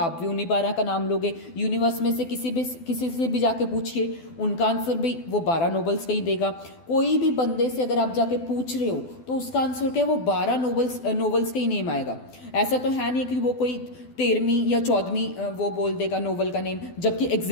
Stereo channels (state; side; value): late; right; 12 ms